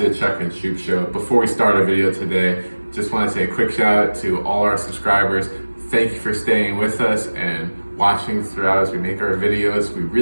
the Chuck and Shoop Show. Before we start our video today, just want to say a quick shout out to all our subscribers. Thank you for staying with us and watching throughout as we make our videos. We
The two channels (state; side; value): inverted; both; correlation -1.00